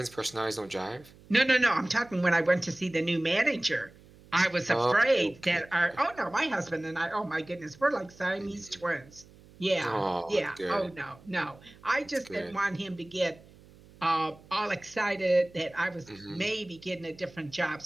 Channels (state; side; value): noise; right; hum, 24 dB below the sound